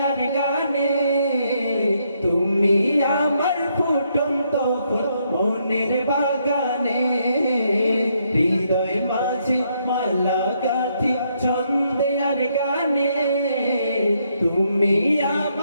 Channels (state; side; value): inverted; both; correlation -0.74